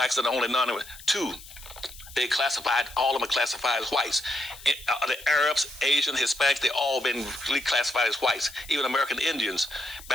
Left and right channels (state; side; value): noise; left; hiss, 18 dB below the sound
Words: are the only non-immigrant. Two, they classified, all of them are classified as whites. The Arabs, Asian, Hispanics, they all been reclassified as whites. Even American Indians